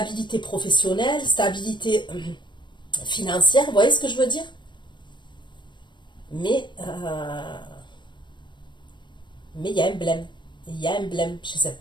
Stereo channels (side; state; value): right; late; 0.22 ms